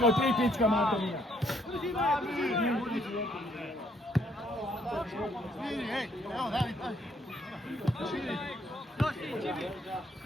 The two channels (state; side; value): normal; both; correlation 0.68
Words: 3 pička materina.